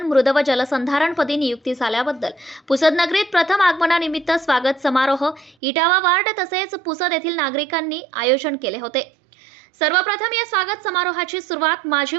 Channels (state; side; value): drops out; left; at 5.6 s